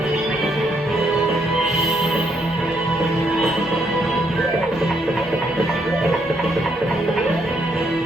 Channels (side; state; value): both; normal; correlation 0.74